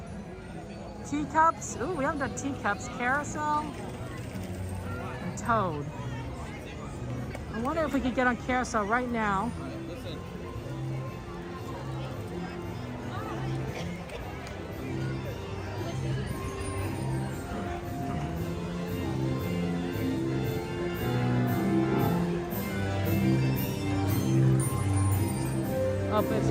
Teacups. Ooh, we haven't done teacups. Carousel. And Toad. I wonder if we could get on Carousel right now. Oh, it's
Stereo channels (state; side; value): identical; both; correlation 1.00